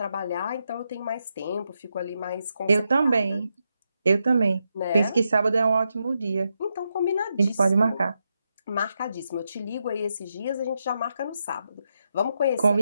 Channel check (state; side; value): inverted; both; correlation -0.84